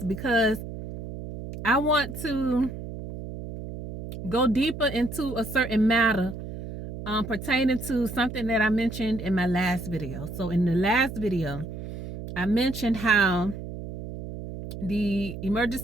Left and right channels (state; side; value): noise; right; hum, 9 dB below the sound